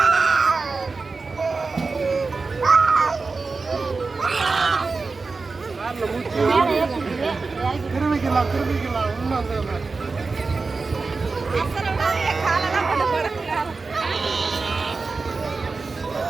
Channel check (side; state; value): left; quieter; 4.1 dB